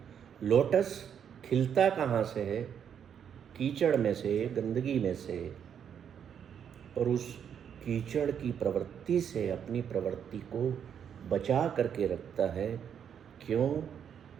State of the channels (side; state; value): left; quieter; 8.3 dB